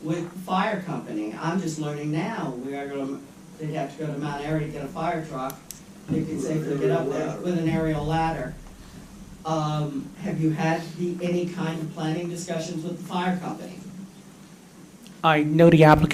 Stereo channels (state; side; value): identical; both; correlation 1.00